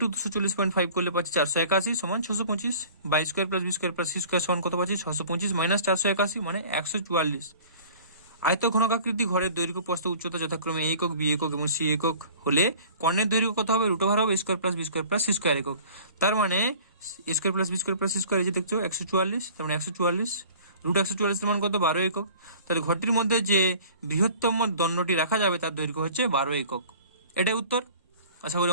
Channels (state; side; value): inverted; both; correlation -0.47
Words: 240.5 করলে পাচ্ছি 481 সমান 625, বা square plus B square plus C square সমান কত পাচ্ছি? 625 মাইনাস 481 মানে 144। আয়ত ঘনকাকৃতি ঘরের দৈর্ঘ্য প্রস্থ উচ্চতা যথাক্রমে এ একক, বি একক এবং সি একক হলে কর্ণের দৈর্ঘ্য কত হবে? √ওভার হবে square plus B square plus C square একক। তার মানে square plus B square plus C square এই যে দেখছো 144, তার মানে 144 √144 এর মান কত? 12 একক। তাহলে ঘরটির মধ্যে যে বৃহত্তম দণ্ডটি রাখা যাবে তার দৈর্ঘ্য হচ্ছে 12 একক। এটাই উত্তর। আশা করি